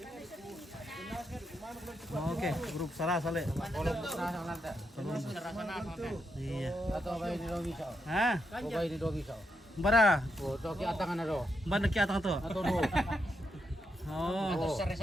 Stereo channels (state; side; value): normal; both; correlation 0.82